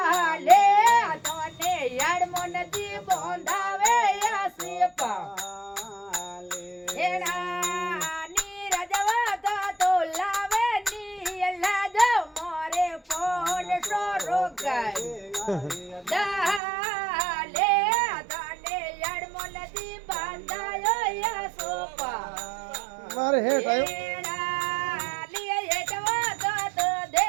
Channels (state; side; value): drops out; left; at 16.6 s